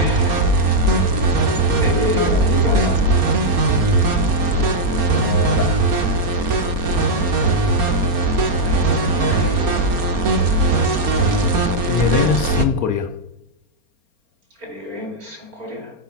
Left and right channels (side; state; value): left; late; 4.3 ms